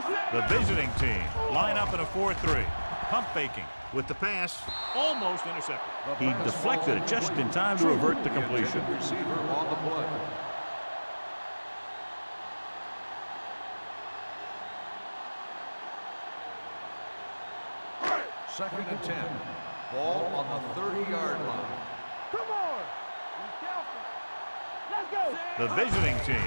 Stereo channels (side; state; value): both; inverted; correlation -1.00